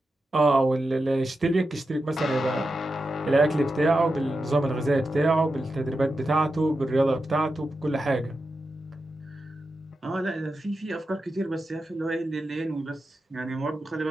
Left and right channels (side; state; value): both; normal; correlation 0.89